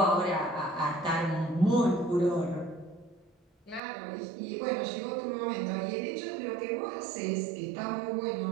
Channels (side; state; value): left; drops out; at 3.8 s